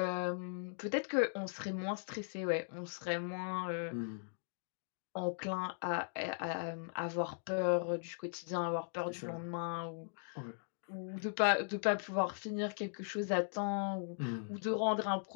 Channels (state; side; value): silent; right; digital silence